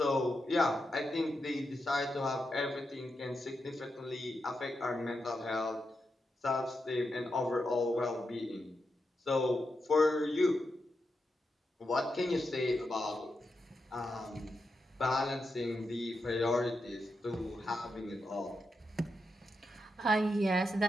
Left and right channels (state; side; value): normal; both; correlation 0.86